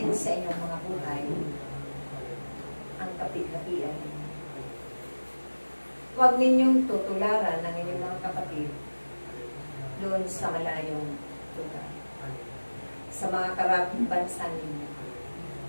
sa inyong mga buhay ang kapit-kapian. Huwag ninyong tutularan ng inyong mga kapatid doon sa malayong lugar, sa mga karaping bansa ninyo,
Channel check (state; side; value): inverted; both; correlation -1.00